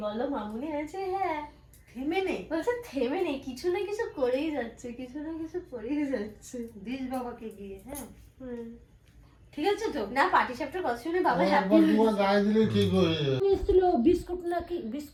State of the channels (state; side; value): identical; both; correlation 1.00